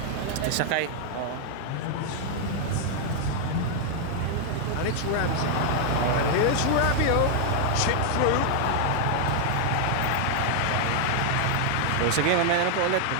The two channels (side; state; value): both; different; correlation 0.00